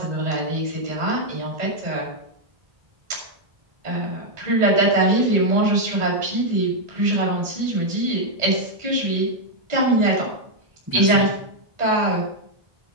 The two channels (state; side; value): late; left; 1.8 ms